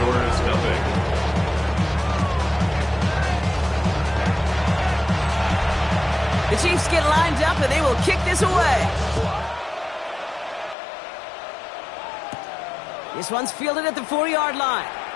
nothing. The Chiefs get lined up and they will kick this away. This one's fielded at the 4-yard line.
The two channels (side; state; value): right; drops out; at 10.8 s